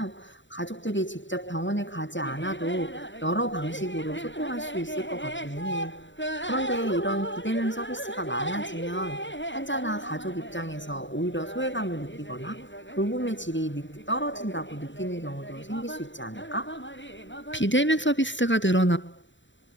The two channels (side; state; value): right; late; 0.54 ms